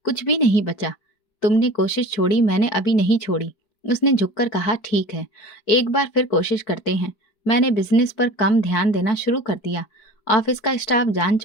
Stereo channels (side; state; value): right; late; 5.0 ms